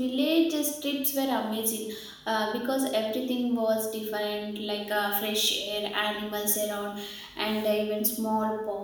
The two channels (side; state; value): both; identical; correlation 1.00